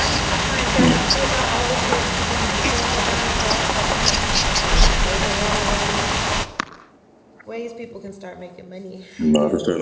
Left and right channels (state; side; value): identical; both; correlation 1.00